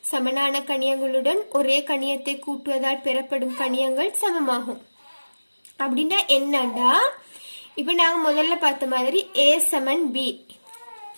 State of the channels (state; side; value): inverted; both; correlation -1.00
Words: சமனான கணியங்களுடன் ஒரே கணியத்தை கூட்டுவதால் பெறப்படும் கணியங்கள் சமமாகும். அப்படின்னா என்னண்டா, இப்ப நாங்க முதல்ல பார்த்த மாதிரி A சமன் B